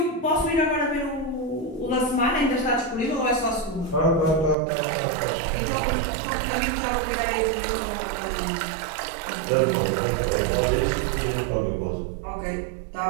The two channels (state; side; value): drops out; left; at 4.5 s